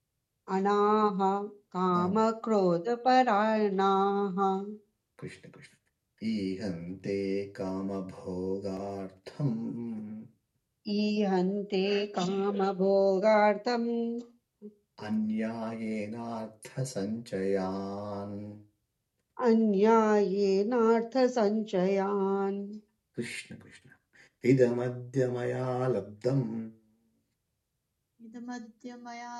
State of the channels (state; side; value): identical; both; correlation 1.00